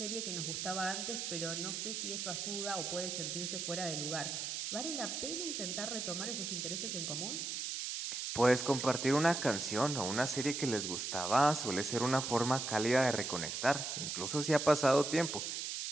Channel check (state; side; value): noise; right; hiss, 3 dB below the sound